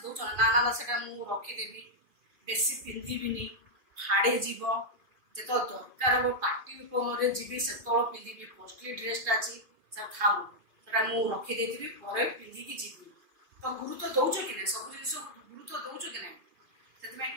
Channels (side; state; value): left; late; 2.3 ms